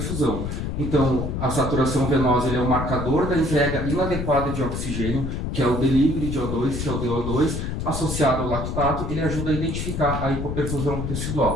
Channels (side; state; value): left; noise; rumble, 3 dB below the sound